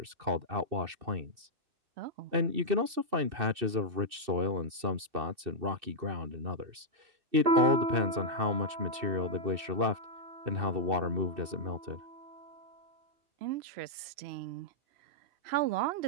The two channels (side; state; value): left; late; 2.6 ms